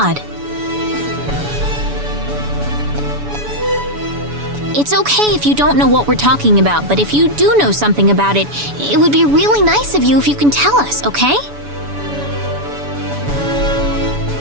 It's okay if you don't know what we're talking about, but if you do know something about it, it would be really nice of you if you can tell us, okay?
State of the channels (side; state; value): left; late; 7.0 ms